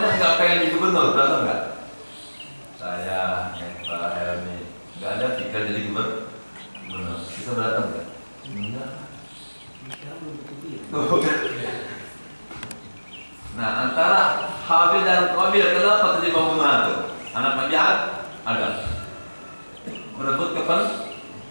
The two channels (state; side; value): inverted; both; correlation -1.00